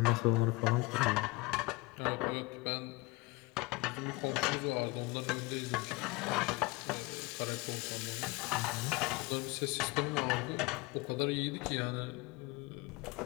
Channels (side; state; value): right; quieter; 24.2 dB